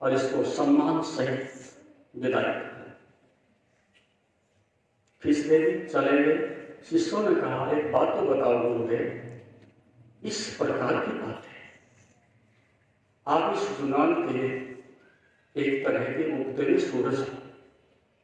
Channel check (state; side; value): identical; both; correlation 1.00